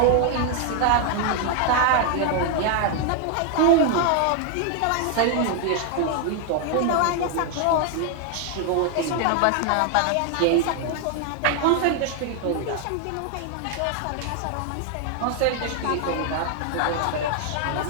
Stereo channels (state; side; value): different; both; correlation 0.00